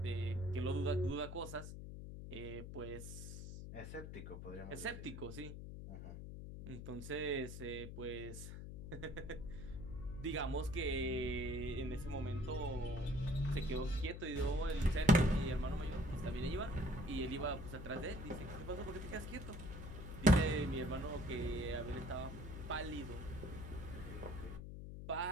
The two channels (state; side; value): noise; left; hum, 8 dB below the sound